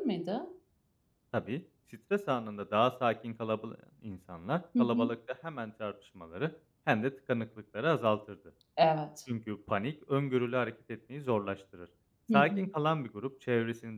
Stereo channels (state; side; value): identical; both; correlation 1.00